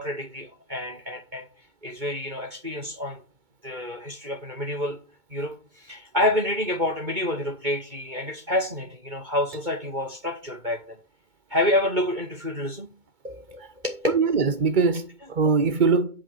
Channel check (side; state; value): left; late; 2.2 ms